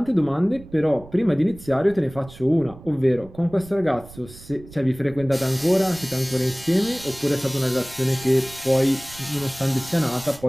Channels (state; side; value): noise; right; rumble, 19 dB below the sound